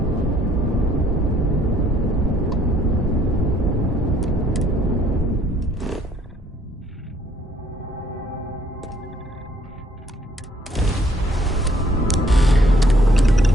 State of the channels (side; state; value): both; normal; correlation 0.64